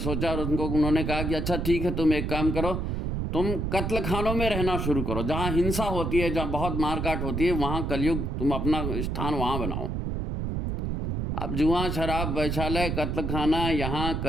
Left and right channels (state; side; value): noise; right; rumble, 2 dB below the sound